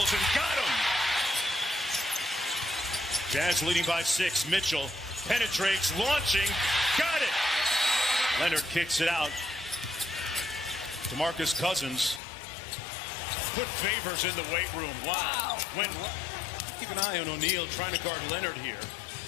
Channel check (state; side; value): drops out; right; at 12.2 s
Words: and got him. Jazz leading by 6. Mitchell penetrates, launching, got it. Leonard kicks it out. DeMarcus Cousins put Favors in the weight room. Wow. Keep an eye on O'Neal trying to guard Leonard here